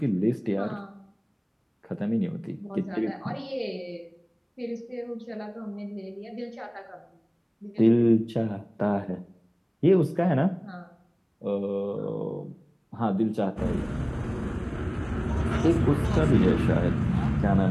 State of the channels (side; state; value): both; identical; correlation 1.00